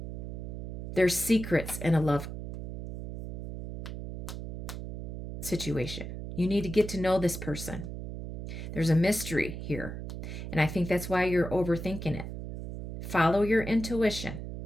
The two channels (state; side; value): noise; right; hum, 8 dB below the sound